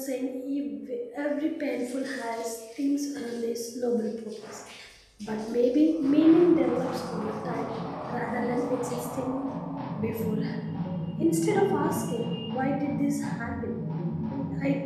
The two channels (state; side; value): identical; both; correlation 1.00